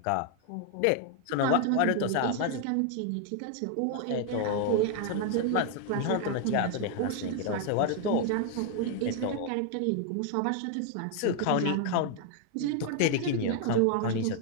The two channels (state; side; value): different; both; correlation 0.00